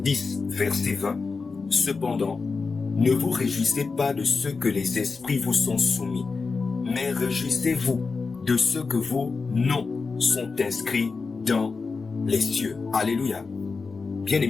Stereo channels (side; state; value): right; quieter; 4.5 dB